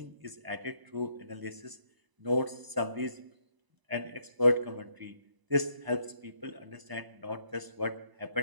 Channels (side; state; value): left; late; 1.0 ms